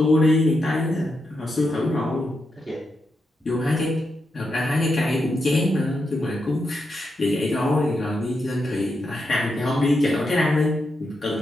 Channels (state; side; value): normal; both; correlation 0.85